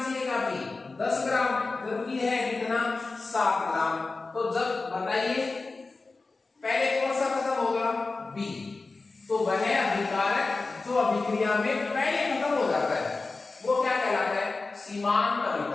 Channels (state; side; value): quieter; right; 3.7 dB